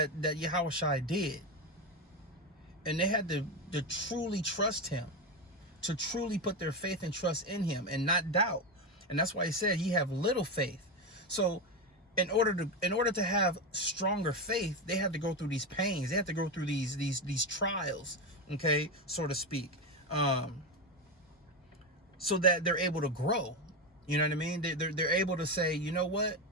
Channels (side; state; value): both; normal; correlation 0.14